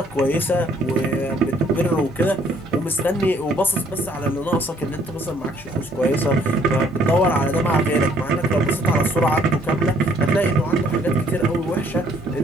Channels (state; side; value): normal; both; correlation 0.63